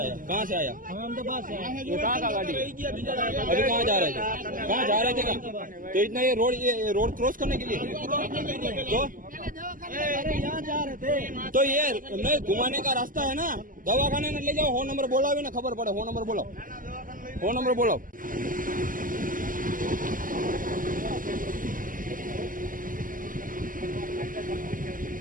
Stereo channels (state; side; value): late; left; 0.40 ms